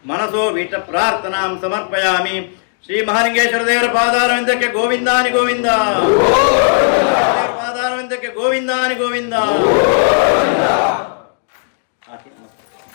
ಮನಸೋ ವೀಟ ಪ್ರಾರ್ಥನಾಂ ಸಮರ್ಪಯಾಮಿ. ಶ್ರೀ ಮಹಾಲಿಂಗೇಶ್ವರ ದೇವರ ಪಾದಾರವಿಂದಕ್ಕೆ ಗೋವಿಂದಾನಿ ಗೋವಿಂದ. ಪಾದಾರವಿಂದಕ್ಕೆ ಗೋವಿಂದಾನಿ ಗೋವಿಂದ.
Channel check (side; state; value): right; silent; digital silence